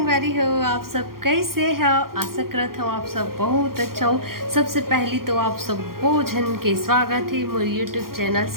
हो, आप सब कैसे हो। आशा करत हूँ आप सब बहुत अच्छा हो। सबसे पहली तो आप सब भोजन के स्वागत है मोर यूट्यूब चैनल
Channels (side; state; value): left; late; 0.92 ms